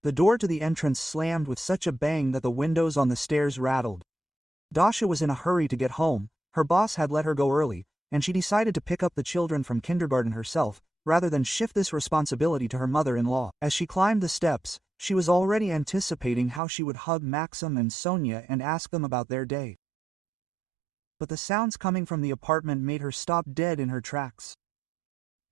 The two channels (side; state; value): left; drops out; at 16.6 s